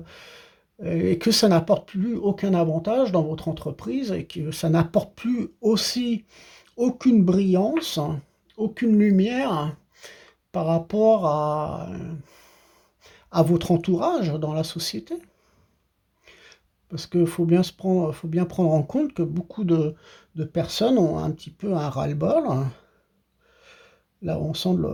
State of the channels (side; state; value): both; identical; correlation 1.00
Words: et que ça n'apporte plus aucun avantage dans votre entreprise et que ça n'apporte plus aussi aucune brillance, aucune lumière par rapport à votre entourage dans la société. Parce qu'il faut bien prendre en compte que beaucoup de personnes ont un petit peu un ras-le-bol. Là, on sent